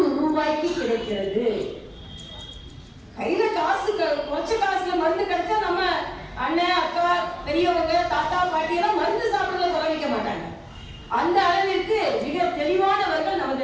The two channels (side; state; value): both; identical; correlation 1.00